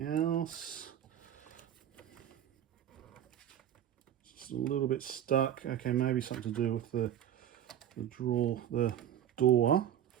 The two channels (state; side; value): quieter; left; 10.5 dB